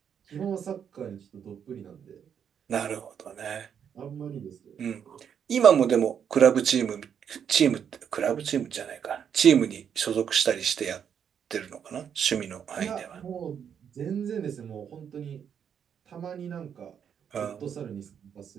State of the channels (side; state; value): left; quieter; 8.0 dB